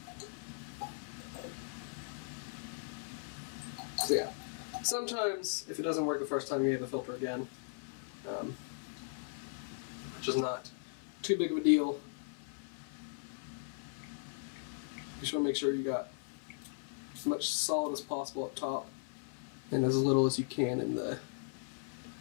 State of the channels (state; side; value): silent; right; 52 dB below the other